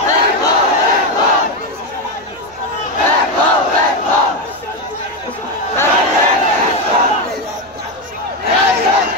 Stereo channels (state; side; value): noise; right; rumble, 28 dB below the sound